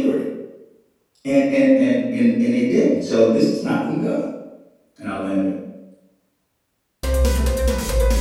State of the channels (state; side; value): identical; both; correlation 1.00